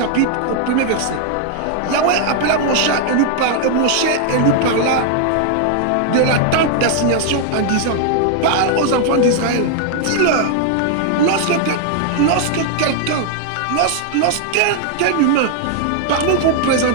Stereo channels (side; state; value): both; different; correlation 0.00